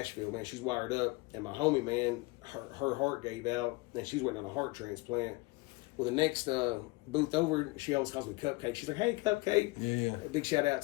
man. She's wired up, and my homie, man, her heart gave out, and she's waiting on a heart transplant. Well, the next booth over, she always calls me Cupcake. She's like, "Hey, Cupcake." Yeah. A big shout out,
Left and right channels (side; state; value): right; quieter; 24.0 dB